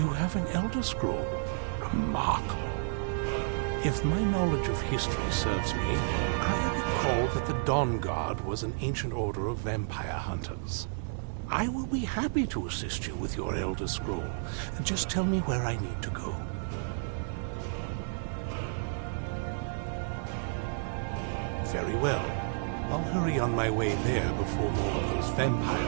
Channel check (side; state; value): left; silent; 57 dB below the other